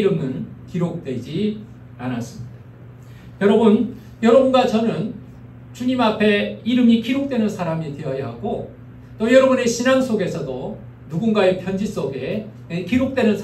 기록되지 않았습니다. 여러분, 여러분과 저는 주님 앞에 이름이 기록되는 사람이 되어야 하고, 또 여러분의 신앙 속에서도 누군가의 편지 속에 기록되는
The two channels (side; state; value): both; identical; correlation 1.00